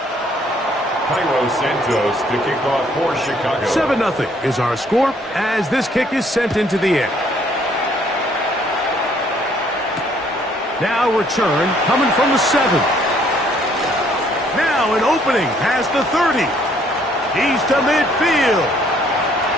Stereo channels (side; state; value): both; normal; correlation 0.64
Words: Cairo Santos to kick off for Chicago. 7-0 is our score as this kick is sent into the air. Now return coming from the 7. Now an opening past the 30. He's to midfield.